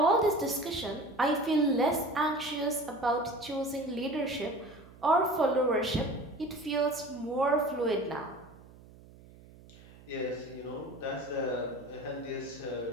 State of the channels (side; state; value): right; noise; hum, 22 dB below the sound